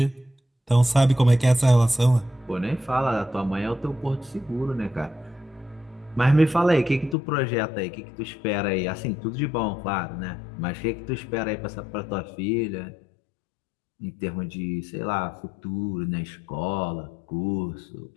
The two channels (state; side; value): drops out; right; at 7.2 s